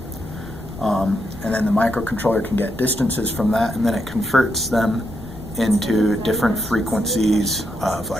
And then the microcontroller can get distances from that, and then it converts them into different frequencies of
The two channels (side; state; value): both; normal; correlation 0.81